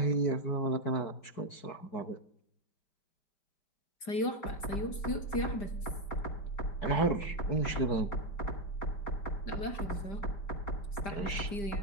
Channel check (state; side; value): late; right; 5.0 ms